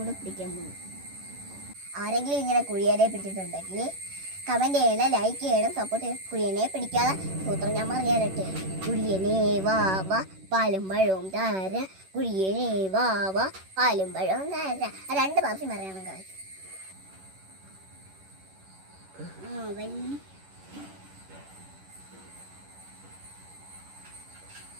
പിടിക്കാൻ പോകും. ആരെങ്കിലും ഇങ്ങനെ കുഴിയനെ പിടിച്ചിട്ടുണ്ടെങ്കിൽ കമൻറ്റ് ചെയ്യണം, ലൈക്ക് ചെയ്യണം, സപ്പോർട്ട് ചെയ്യണം. കുഴിയനെ പിടിക്കാതെ സൂത്രം ഞാൻ പറയാനട്ടെ. കുഴിയനെ വാവ പാലും പഴവും താര, കുഴിയനെ വാവ പാലും പഴവും താര. 2 പ്രാവശ്യം പറയണം ഗായ്സ്.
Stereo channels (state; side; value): late; left; 11 ms